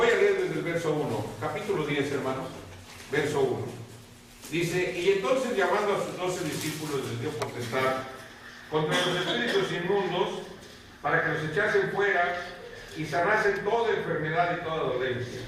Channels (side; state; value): both; identical; correlation 1.00